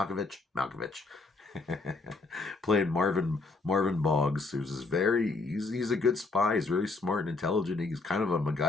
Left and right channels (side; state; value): right; quieter; 3.7 dB